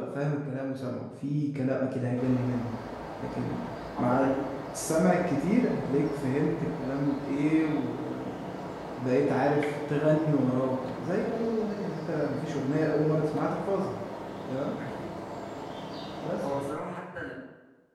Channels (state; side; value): identical; both; correlation 1.00